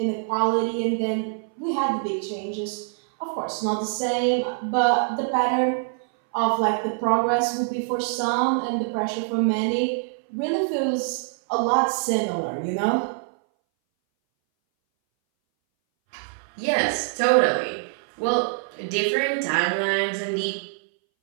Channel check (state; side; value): silent; left; 60 dB below the other